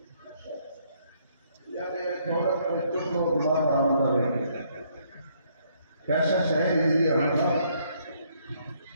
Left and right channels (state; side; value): inverted; both; correlation -0.68